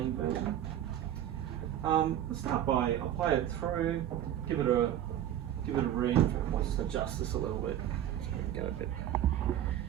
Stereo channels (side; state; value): left; quieter; 11.3 dB